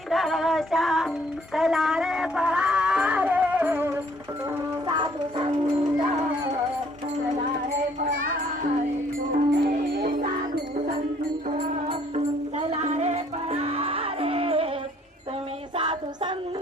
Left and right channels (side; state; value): both; normal; correlation 0.62